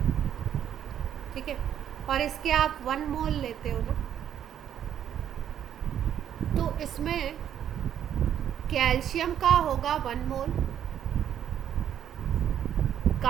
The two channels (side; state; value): left; quieter; 9.9 dB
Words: ठीक है, और इसके आप 1 मोल लेते हो ना, तो इसमें कैल्शियम का होगा 1 मोल,